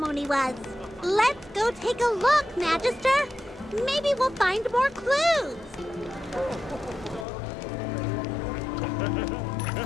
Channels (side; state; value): right; drops out; at 7.2 s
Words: was. Let's go take a look, Magister. Maybe we'll find more clues.